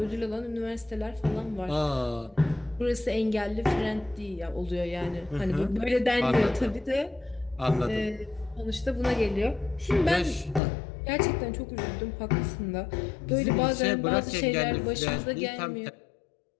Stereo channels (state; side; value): drops out; right; at 10.6 s